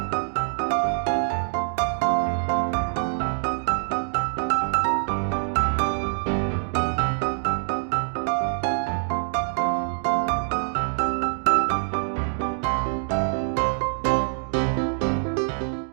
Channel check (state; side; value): silent; left; digital silence